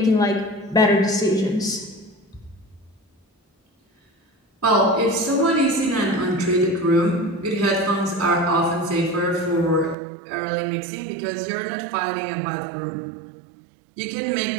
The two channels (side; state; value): left; drops out; at 10.0 s